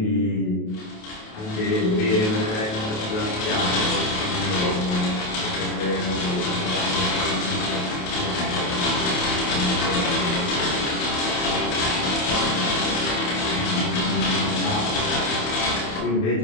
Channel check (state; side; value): late; right; 28 ms